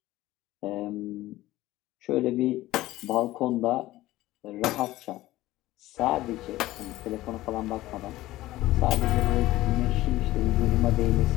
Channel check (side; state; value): right; quieter; 16.7 dB